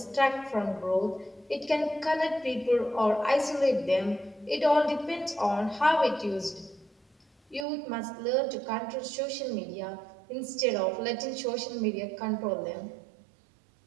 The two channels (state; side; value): drops out; left; at 7.7 s